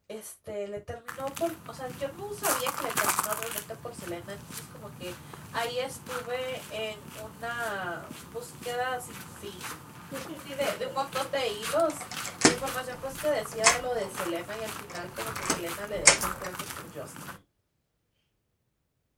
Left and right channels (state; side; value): identical; both; correlation 1.00